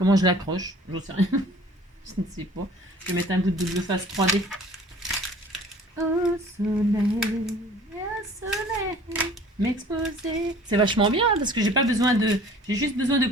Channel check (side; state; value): both; normal; correlation 0.49